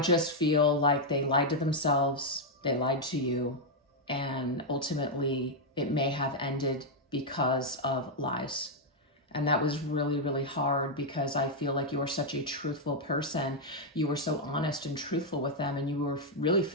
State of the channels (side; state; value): both; normal; correlation -0.01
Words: feel like they lied to themselves. They lied to you. And ultimately, it may have ended because of lies. And that was really, really hard, because I feel like you were such a truthful person. You were so honest and truthful with them, and you were really